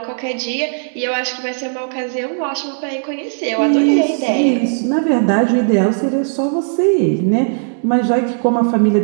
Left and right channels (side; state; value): left; silent; 68 dB below the other